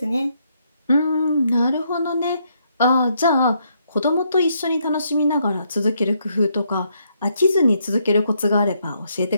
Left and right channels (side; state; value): both; inverted; correlation -0.74